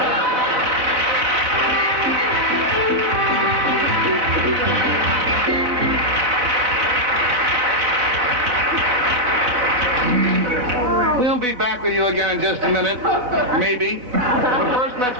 We'll be back with you again in just a minute, maybe. But first, let's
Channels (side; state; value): left; late; 4.0 ms